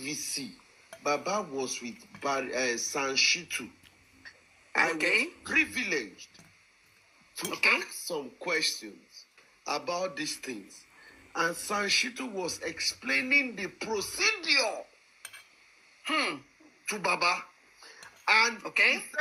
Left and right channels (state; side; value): identical; both; correlation 1.00